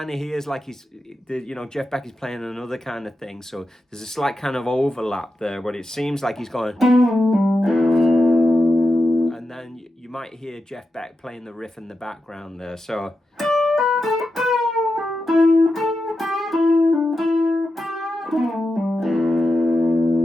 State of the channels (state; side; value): normal; both; correlation 0.90